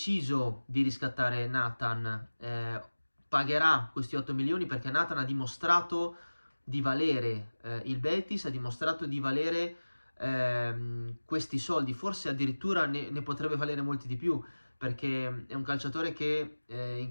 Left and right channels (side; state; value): both; inverted; correlation -1.00